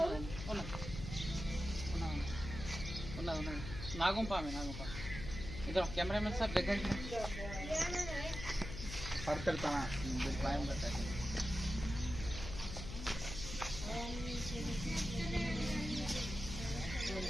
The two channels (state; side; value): noise; left; hum, 8 dB below the sound